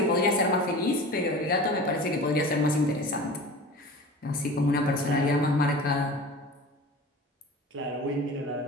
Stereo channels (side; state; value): both; normal; correlation 0.37